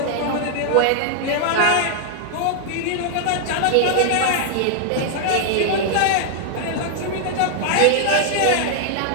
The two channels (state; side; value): different; both; correlation -0.01